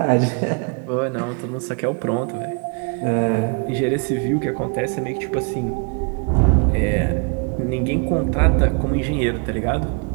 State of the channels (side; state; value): left; quieter; 35.0 dB